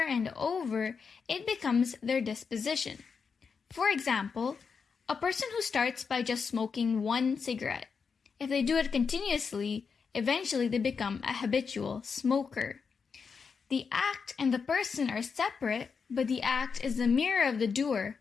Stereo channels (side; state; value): right; quieter; 5.7 dB